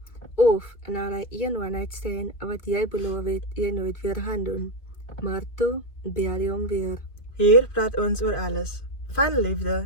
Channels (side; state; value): right; late; 2.2 ms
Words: Of na daai een one-night stand wat jy beloof het jy nooit weer gaan doen. Maar toe bel jy hom weer. Hier praat ons oor alles, van